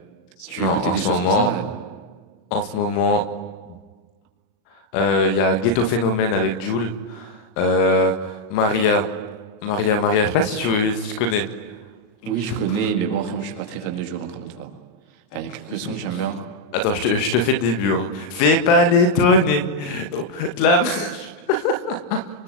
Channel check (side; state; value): right; late; 38 ms